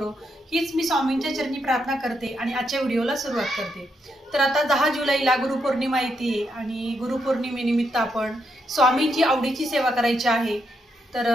हीच मी स्वामींच्या चरणी प्रार्थना करते आणि आजच्या व्हिडिओला सुरुवात करते. तर आता 10 जुलैला गुरुपौर्णिमा येते आणि गुरुपौर्णिमेनिमित्त आपण स्वामींची आवडीची सेवा करायची आहे. तर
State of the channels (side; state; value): both; normal; correlation 0.80